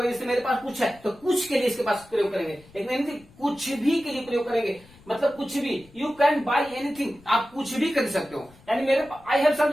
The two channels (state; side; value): noise; left; rumble, 26 dB below the sound